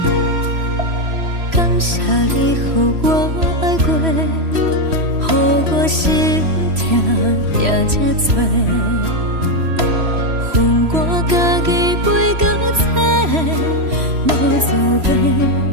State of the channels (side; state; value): left; late; 3.0 ms